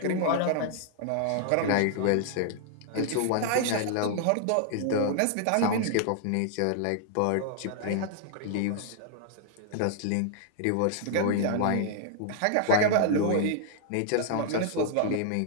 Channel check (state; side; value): different; both; correlation -0.01